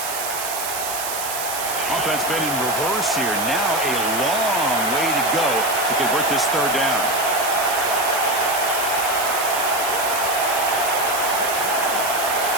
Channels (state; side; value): noise; right; hiss, 5 dB below the sound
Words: Offense been in reverse here. Now a long way to go to convert this 3rd down.